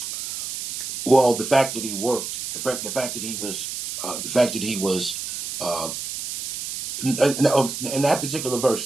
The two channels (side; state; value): right; noise; hiss, 6 dB below the sound